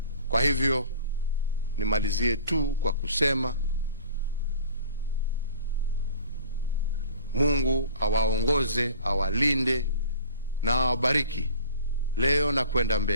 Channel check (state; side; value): inverted; both; correlation -0.46